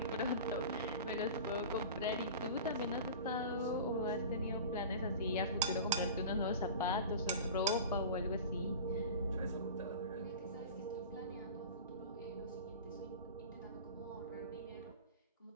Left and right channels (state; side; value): inverted; both; correlation -0.35